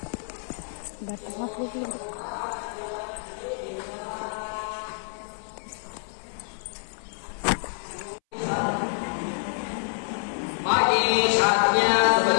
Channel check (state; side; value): silent; right; 60 dB below the other